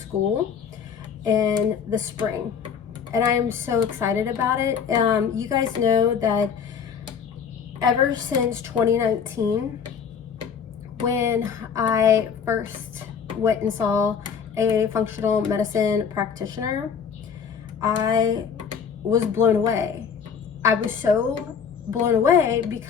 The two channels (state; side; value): quieter; right; 6.9 dB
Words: in the spring, and I am so excited about it. You guys know that ever since 2019, when I first went and saw a functional medicine practitioner, I was blown away. I was so blown away